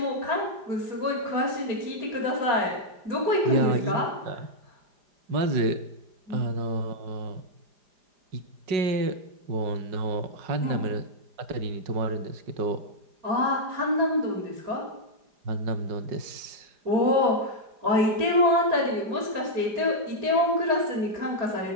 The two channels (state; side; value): late; left; 4.9 ms